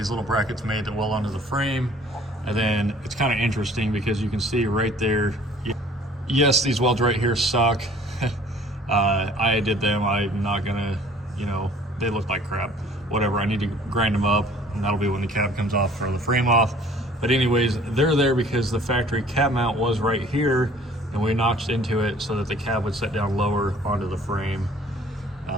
little brackets made that weld onto the frame. And then it's kind of interesting because you can see right there, yes, these welds right here suck. I did them. I'm not gonna, you know, they look like crap. Whatever, I need to grind them up, and that'll be when the cab comes off for the frame off. But anyways, they're there because the factory cab mount was right here, and we notched into it so that the cab would set down lower onto the frame.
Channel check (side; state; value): both; normal; correlation 0.53